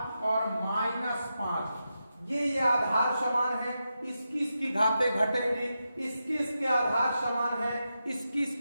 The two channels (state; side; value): inverted; both; correlation -0.88